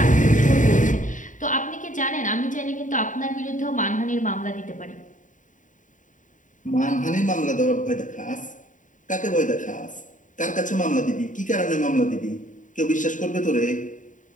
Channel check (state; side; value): late; right; 0.37 ms